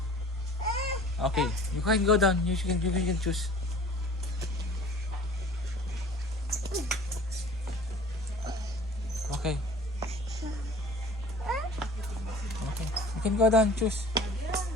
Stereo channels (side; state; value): both; normal; correlation 0.45